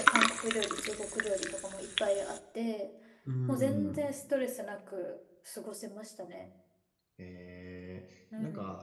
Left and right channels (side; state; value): both; identical; correlation 1.00